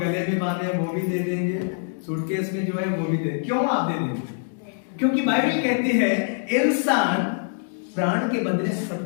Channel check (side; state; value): right; silent; digital silence